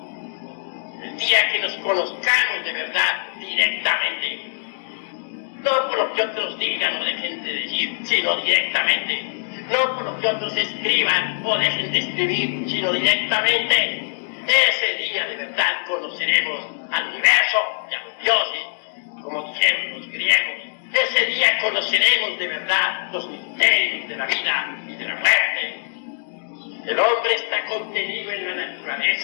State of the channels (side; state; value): right; silent; digital silence